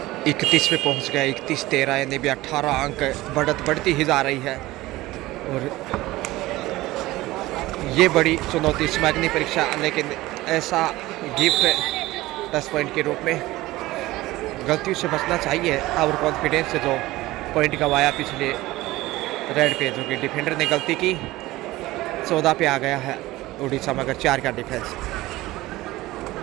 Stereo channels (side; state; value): left; quieter; 18.2 dB